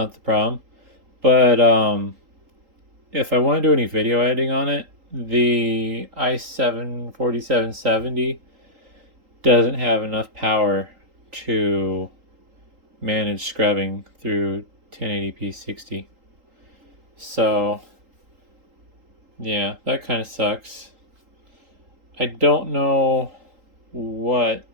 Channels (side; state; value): left; late; 3.8 ms